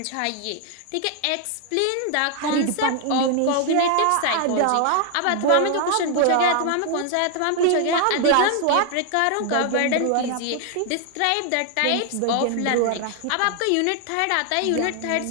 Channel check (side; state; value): both; different; correlation 0.00